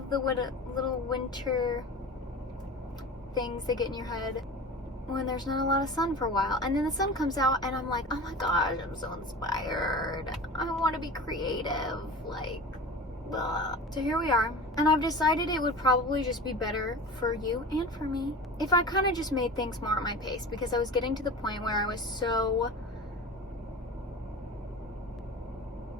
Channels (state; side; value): normal; both; correlation 0.33